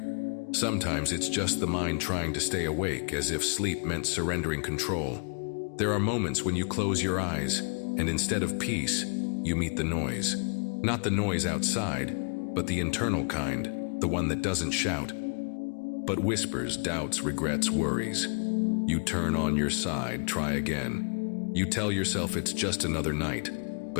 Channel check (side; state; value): right; quieter; 39.9 dB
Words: Sometimes it's just the mind trying to stay awake, as if sleep meant surrendering control. There are moments when you close your eyes, and instead of peace, you meet the noise. Not the noise outside, but the internal kind, the one that doesn't shout, but whispers, doubts, regrets, worries. You turn on your side, try again. You tell yourself it's just another night,